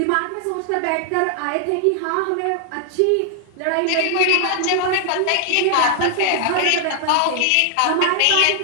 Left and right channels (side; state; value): both; different; correlation 0.00